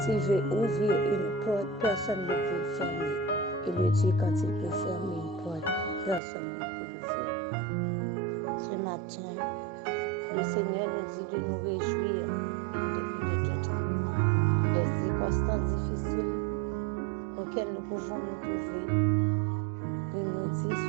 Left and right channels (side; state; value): left; drops out; at 6.2 s